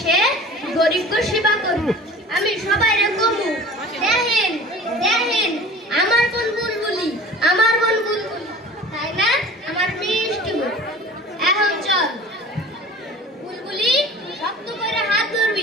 গরিবকে সেবা করবি আমি সবাইরে কমু দেখেন দেখেন আমার বোন বুলবুলি তাই না আমার মিষ্টি বোন এখন চল বুলবুলি শক্ত করে হাত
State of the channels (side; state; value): both; normal; correlation 0.42